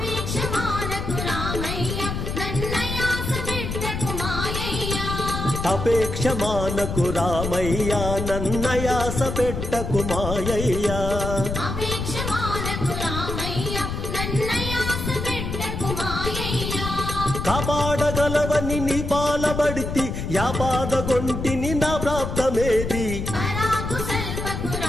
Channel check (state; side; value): noise; left; rumble, 4 dB below the sound